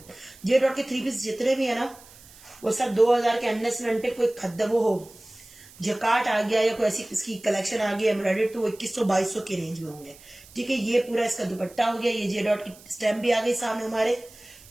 जे डॉट के 3 पीस जितने भी है ना वो सब 2000 के अंडर से अंटे। कोई खद्दा वो हो जकाट आ गया या कोई ऐसी इसकी कलेक्शन आ गई एम्ब्रॉयडर्ड तो वो 2100-2200 के रेंज में होंगे, ठीक है। ये पूरा इसका दुपट्टा हो गया। ये जे डॉट की स्टैम्प भी आ गई सामने हमारे,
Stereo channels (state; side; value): noise; right; hiss, 22 dB below the sound